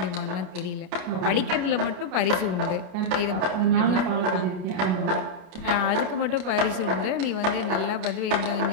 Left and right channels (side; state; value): left; late; 33 ms